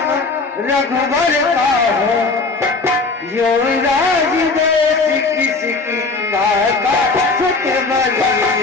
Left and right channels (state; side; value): quieter; right; 3.9 dB